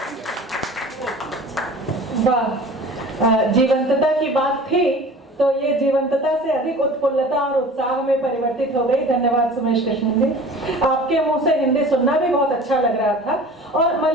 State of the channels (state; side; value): normal; both; correlation 0.42